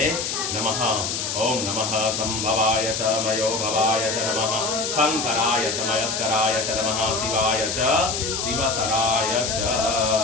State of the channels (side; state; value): left; noise; hiss, 2 dB below the sound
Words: नमः। ओम नमः संभवाय च मयो भवाय च नमः शंकराय च मयस्कराय च नमः शिवाय च शिवतराय च।